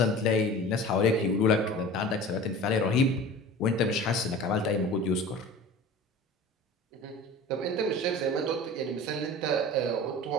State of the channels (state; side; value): normal; both; correlation 0.38